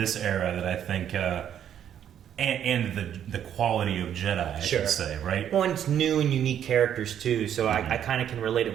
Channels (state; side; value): quieter; left; 9.7 dB